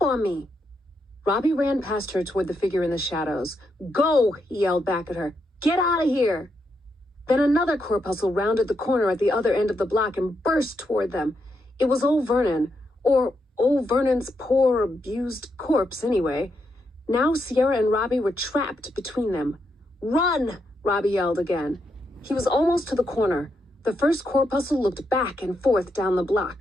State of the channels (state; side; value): normal; both; correlation 0.81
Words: on me." Robbie ran past her toward the figure in the shadows. "Go!" he yelled back at her. "Get out of here!" Then another corpuscle rounded the corner at the other end of the block and burst toward them. It was old Vernon, or old Vernon's poor, abused corpse anyway. Now Sierra and Robbie were trapped between them. "Run!" Robbie yelled again. He was almost to the corner. The first corpuscle looked back and forth down the